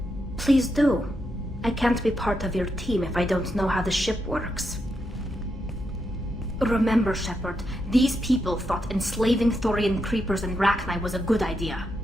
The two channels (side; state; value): both; normal; correlation 0.83